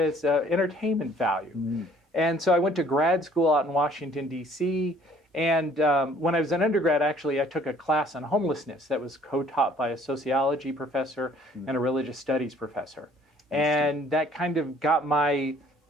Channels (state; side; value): normal; both; correlation 0.58